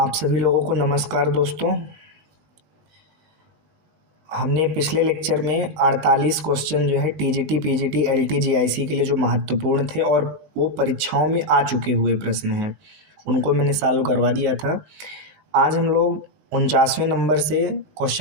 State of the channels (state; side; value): late; left; 19 ms